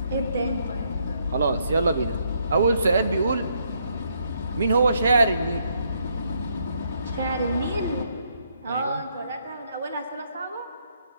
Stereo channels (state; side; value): inverted; both; correlation -0.74